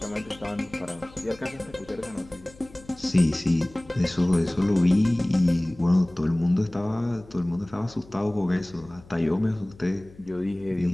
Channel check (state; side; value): noise; left; hum, 23 dB below the sound